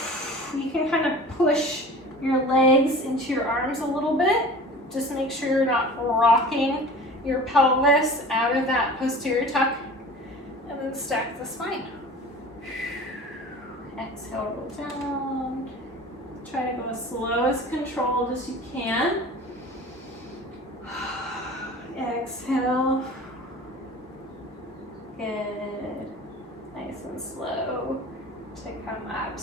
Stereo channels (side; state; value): both; normal; correlation 0.40